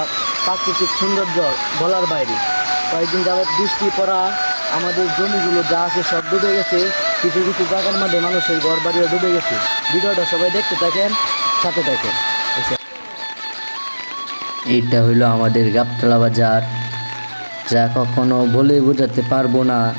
প্রাকৃতিক সৌন্দর্য বলার বাইরে। কয়েকদিন যাবৎ বৃষ্টি পড়া আমাদের জমিগুলো যা আছে সব ডুবে গেছে। কিছু কিছু জায়গার মধ্যে মানুষের ঘর বাড়িও ডুবে গেছে। ভিডিওটা সবাই দেখতে থাকেন, সাথে থাকেন। এইটা হইলো আমাদের গাবতলা বাজার, যা কখনো বলে বোঝাতে পারবো না।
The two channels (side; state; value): both; inverted; correlation -1.00